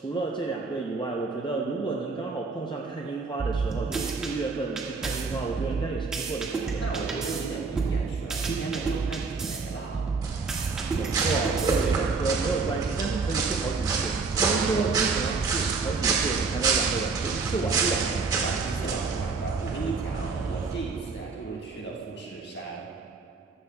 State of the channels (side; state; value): left; quieter; 4.4 dB